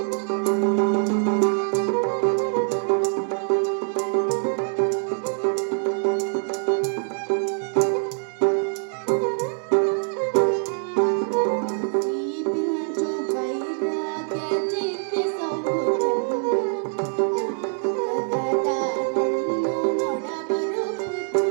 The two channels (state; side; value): silent; left; 58 dB below the other